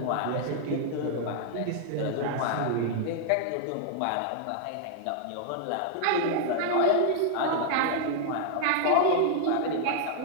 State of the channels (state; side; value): different; both; correlation -0.01